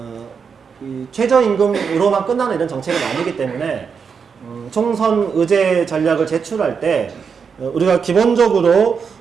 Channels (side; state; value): left; quieter; 6.1 dB